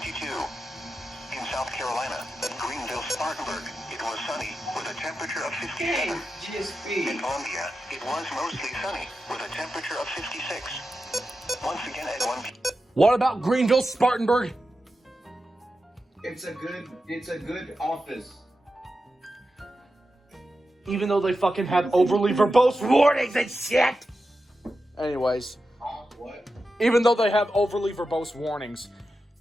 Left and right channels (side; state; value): both; normal; correlation 0.90